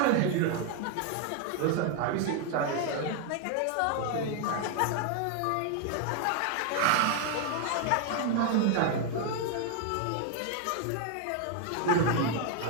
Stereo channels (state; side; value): different; both; correlation 0.01